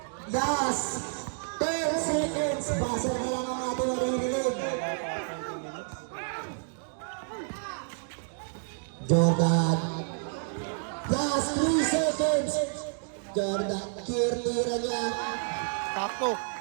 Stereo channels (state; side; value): silent; left; digital silence